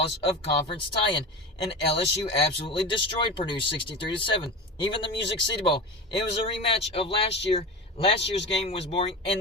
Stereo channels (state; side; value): normal; both; correlation 0.27